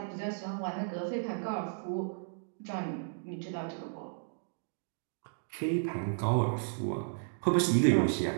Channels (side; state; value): left; silent; digital silence